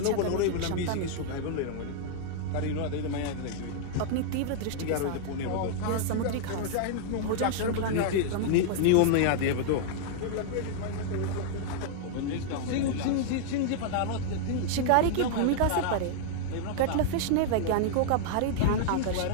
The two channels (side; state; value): both; different; correlation -0.01